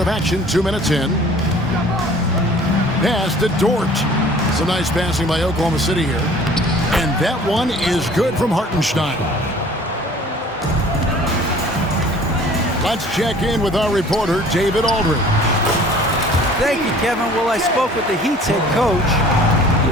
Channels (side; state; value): both; normal; correlation 0.50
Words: action, 2 minutes in. Pass to Dort. It's a nice passing by Oklahoma City here. And that one is good from Hartenstein. Let's check in with our reporter, David Aldridge. Thank you, Kevin. Well, I spoke with the Heat's head coach. He